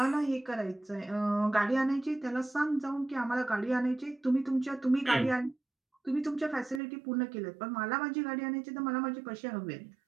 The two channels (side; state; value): left; drops out; at 6.8 s